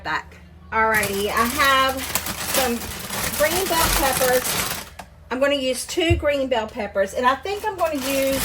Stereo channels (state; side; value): identical; both; correlation 1.00